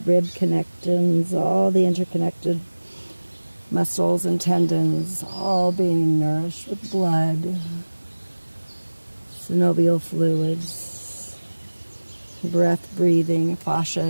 connections, all the interconnected muscles and tendons, all being nourished with blood, synovial fluids, breath breathing,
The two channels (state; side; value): inverted; both; correlation -1.00